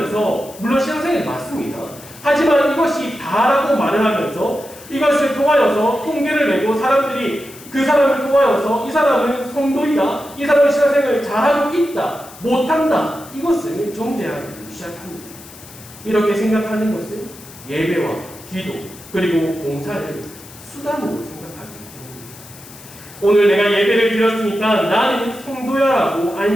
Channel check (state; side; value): noise; left; hiss, 19 dB below the sound